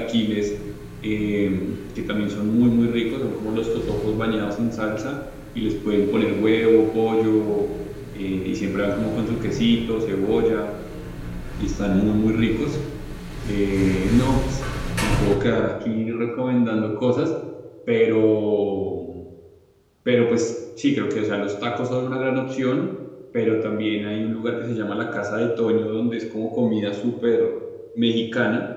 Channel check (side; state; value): both; identical; correlation 1.00